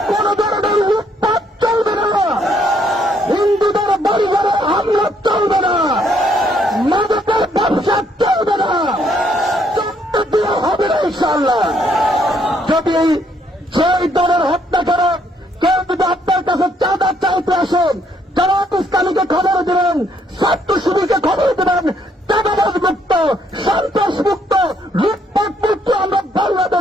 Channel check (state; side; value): normal; both; correlation 0.69